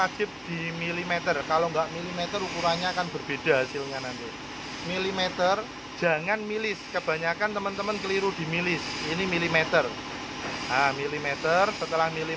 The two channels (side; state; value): both; identical; correlation 1.00